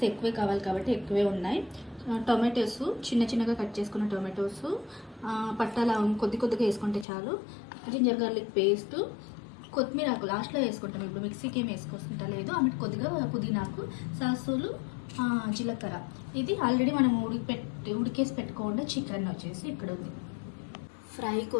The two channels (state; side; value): drops out; right; at 7.1 s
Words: ఎక్కువే కావాలి కాబట్టి ఎక్కువే ఉన్నాయి. టొమాటోస్ చిన్నగా కట్ చేసుకున్న టొమాటోస్, పట్టాల కొద్దిగా వేసుకుంటే చాలు. జింజర్ గార్లిక్ పేస్ట్, కొత్తిమీర ఆకు లాస్ట్లో వేసుకుంటాం. ఇప్పుడు మిక్సీకి ఏం వేసుకుంటా లేదు. ఆమె కొద్దిగా పుదీనాకు, సాసులు, జీలకర్ర. ఇది ఆల్రెడీ మనం ఉడికేసి పెట్టుకోకుండా చికెన్ వచ్చేసి ఇక్కడ ఉంది. ఫ్రై